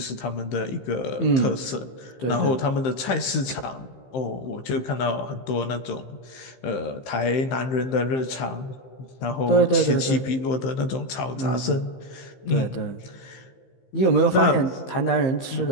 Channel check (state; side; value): late; right; 15 ms